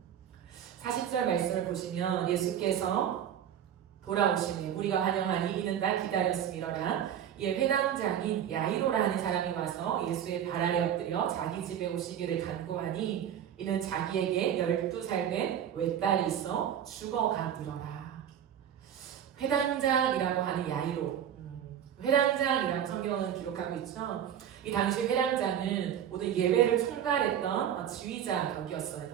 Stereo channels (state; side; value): quieter; left; 9.7 dB